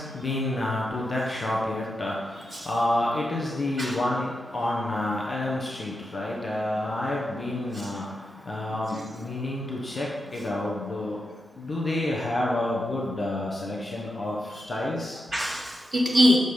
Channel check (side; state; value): both; normal; correlation 0.87